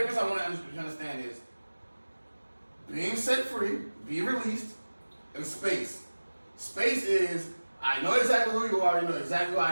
I want to understand is being set free, be released, and space. Space is I know exactly who you are, you know exactly who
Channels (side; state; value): both; inverted; correlation -1.00